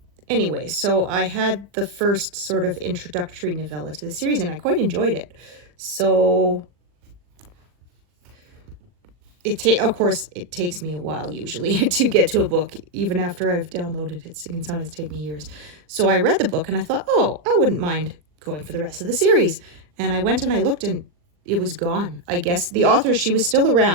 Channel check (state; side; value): late; left; 40 ms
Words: Anyway, so I had the first sort of introductory novella to the series, and I quite enjoyed it. So of course, it takes me a while usually to get to a book, even after I've downloaded it. It can sometimes take me years. So I read the book and I thought, oh, I wouldn't mind going for the rest of the series. And I went and I looked and it was gone. I guess the author, she was still